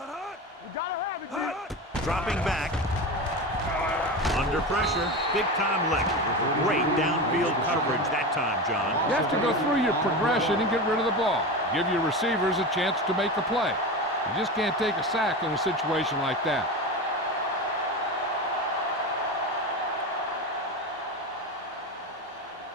gotta have it, kid. Dropping back. Under pressure. Big-time lick. Great downfield coverage that time, John. You have to go through your progression and get rid of the ball. Give your receivers a chance to make a play. You just can't take a sack in a situation like that.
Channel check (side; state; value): both; normal; correlation 0.24